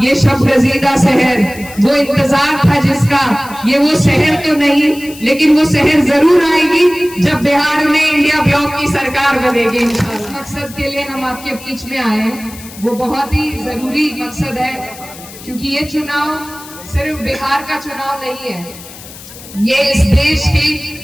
ये शब रजीदा शहर, वो इंतजार था जिसका, ये वो शहर तो नहीं लेकिन वो शहर जरूर आएगी जब बिहार में इंडिया ब्लॉक की सरकार बनेगी इंशाल्लाह। मकसद के लिए हम आपके बीच में आए हैं, वो बहुत ही जरूरी मकसद है, क्योंकि ये चुनाव सिर्फ बिहार का चुनाव नहीं है, ये इस देश की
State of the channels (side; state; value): left; noise; hiss, 17 dB below the sound